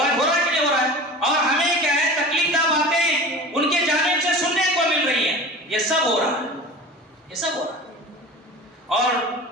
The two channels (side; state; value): both; normal; correlation 0.36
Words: ہو رہا ہے کہ نہیں ہو رہا ہے؟ اور ہمیں کیا ہے, تکلیف دہ باتیں ان کے جانب سے سننے کو مل رہی ہیں. یہ سب ہو رہا ہے, یہ سب ہو رہا ہے. اور